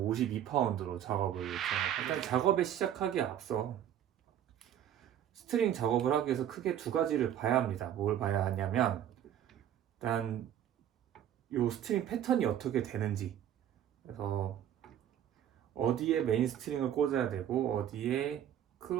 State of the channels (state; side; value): quieter; left; 10.5 dB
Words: 52파운드로 작업을 일단 작업에 시작하기에 앞서 스트링 작업을 하기 위해서 크게 두 가지를 봐야 합니다. 뭘 봐야 하냐면 일단 요 스트링 패턴이 어떻게 되는지, 그래서 어디에 메인 스트링을 꽂아야 되고 어디에